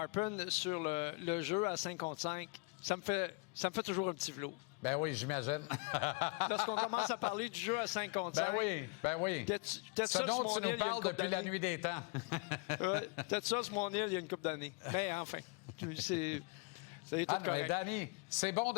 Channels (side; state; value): right; quieter; 30.5 dB